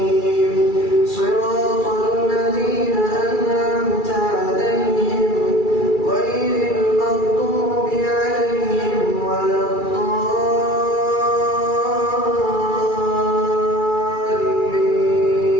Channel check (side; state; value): right; late; 2.3 ms